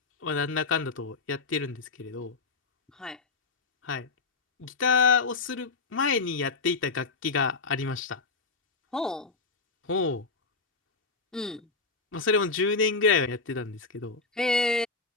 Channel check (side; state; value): right; quieter; 4.2 dB